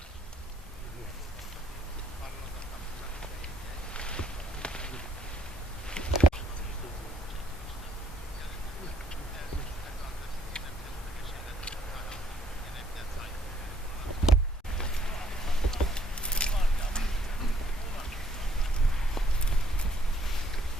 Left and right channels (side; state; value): both; normal; correlation 0.69